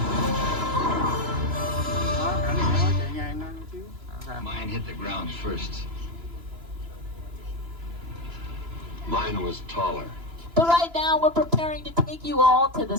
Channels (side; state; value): left; late; 2.9 ms